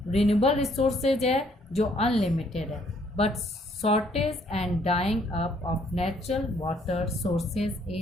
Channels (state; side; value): normal; both; correlation 0.66